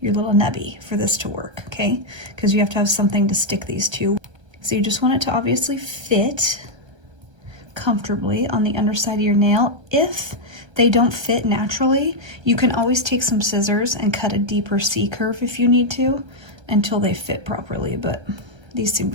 your little nubby for this to work, okay? Because you have to have something to stick these to. So you just want it to obviously fit comfortably on the underside of your nail. If they don't fit naturally, you can always take some scissors and cut a deeper C curve if you need to until they fit properly, but these seem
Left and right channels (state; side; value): late; left; 1.3 ms